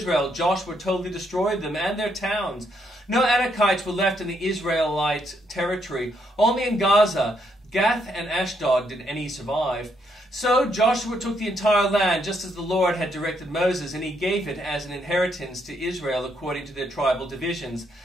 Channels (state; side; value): normal; both; correlation 0.75